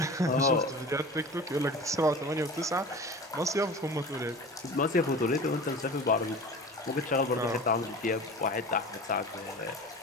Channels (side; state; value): both; normal; correlation 0.36